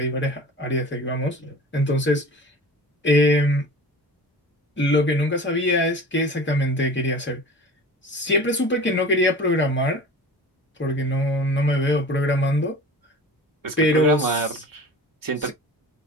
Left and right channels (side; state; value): both; normal; correlation 0.38